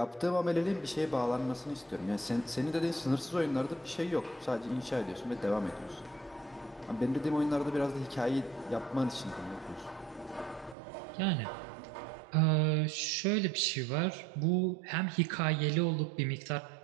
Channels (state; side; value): drops out; left; at 10.8 s